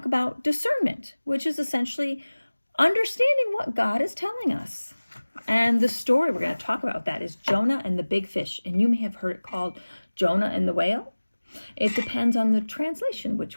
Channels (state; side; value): inverted; both; correlation -1.00